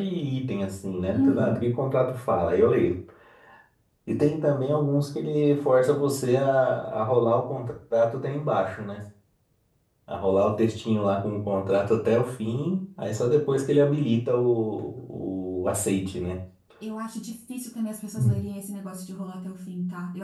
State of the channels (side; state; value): both; identical; correlation 1.00